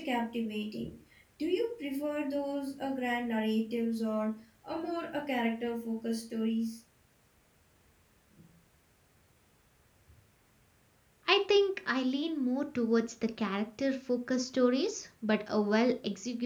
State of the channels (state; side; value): identical; both; correlation 1.00